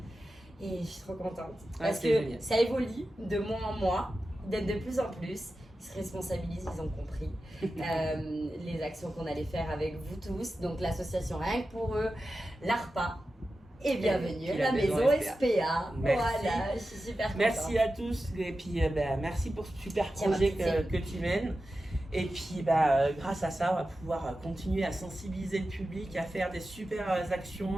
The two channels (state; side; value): normal; both; correlation 0.92